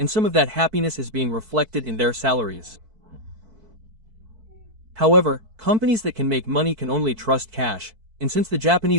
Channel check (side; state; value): left; late; 4.5 ms